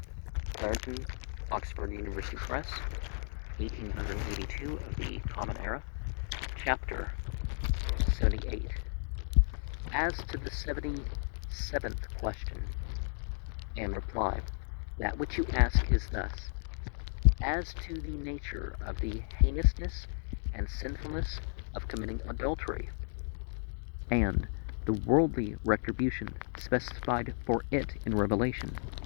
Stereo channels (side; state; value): right; silent; 55 dB below the other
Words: Clarendon, Oxford University Press, 1882 of the Common Era, Chapter 78. As to the 77th question and reply, that which you ask is thus: as to the nature of the heinousness and sinfulness of committing adultery, and the worldly retribution specified for it in Revelation,